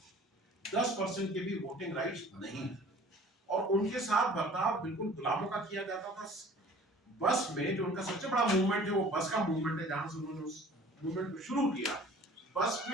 10% के भी वोटिंग राइट्स नहीं थे, और उनके साथ बर्ताव बिल्कुल गुलामों का किया जाता था। बस में जो उनका सबसे बड़ा मूवमेंट है वो बस का मूवमेंट है, जहां से उन्होंने उस मूवमेंट को शुरू किया। बस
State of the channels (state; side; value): normal; both; correlation 0.48